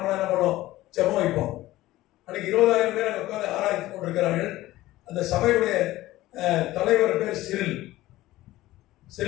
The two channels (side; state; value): right; quieter; 16.6 dB